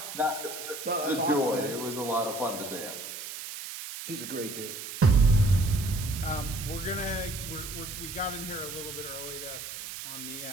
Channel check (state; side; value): noise; right; hiss, 9 dB below the sound